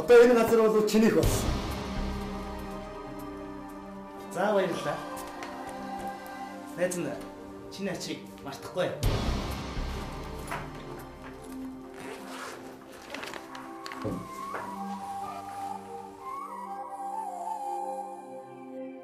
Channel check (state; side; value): identical; both; correlation 1.00